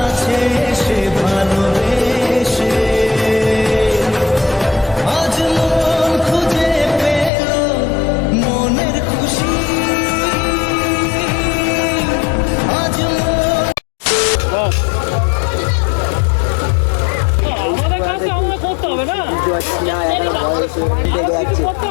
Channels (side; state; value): right; drops out; at 7.3 s